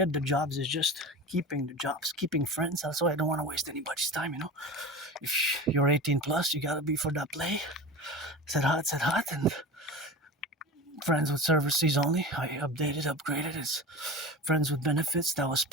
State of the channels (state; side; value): normal; both; correlation 0.31